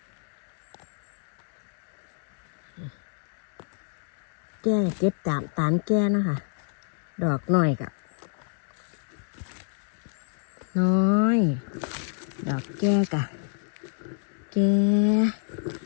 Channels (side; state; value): right; silent; digital silence